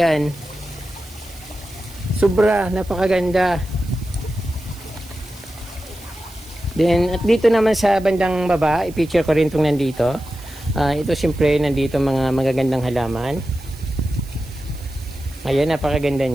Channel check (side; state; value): right; noise; hiss, 22 dB below the sound